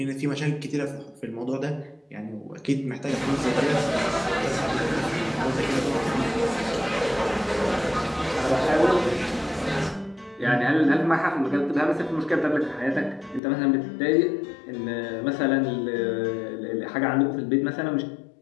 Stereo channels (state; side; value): drops out; right; at 13.4 s